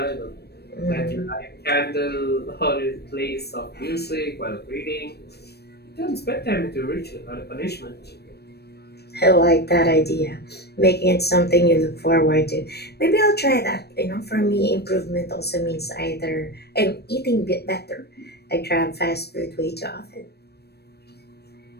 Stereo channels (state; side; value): late; right; 0.47 ms